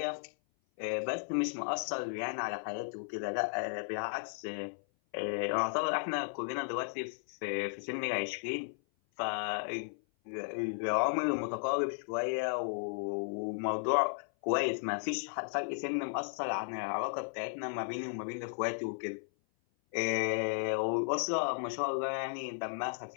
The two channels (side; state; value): right; silent; 55 dB below the other